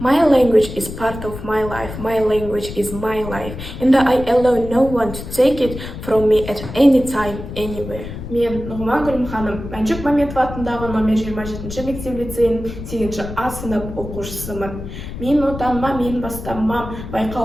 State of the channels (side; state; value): left; noise; rumble, 10 dB below the sound